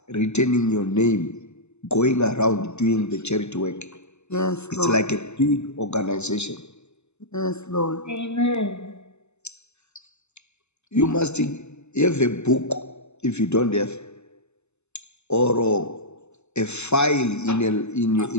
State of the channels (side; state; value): right; late; 0.82 ms